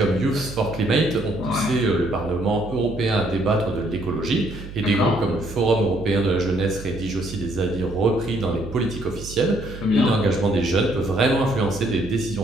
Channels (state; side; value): noise; right; hum, 12 dB below the sound